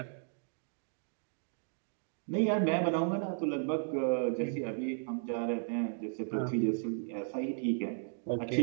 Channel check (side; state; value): left; silent; digital silence